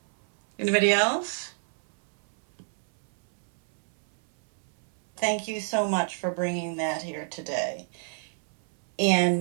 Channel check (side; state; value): left; silent; 60 dB below the other